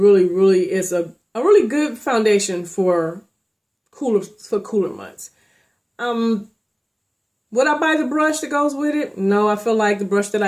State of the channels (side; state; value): both; identical; correlation 1.00